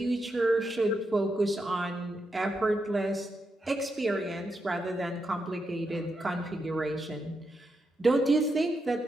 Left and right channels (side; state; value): both; normal; correlation 0.84